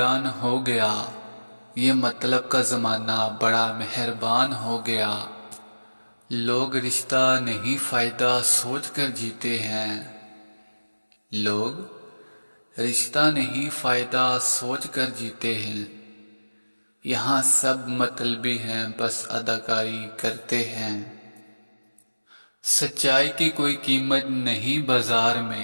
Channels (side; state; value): both; inverted; correlation -1.00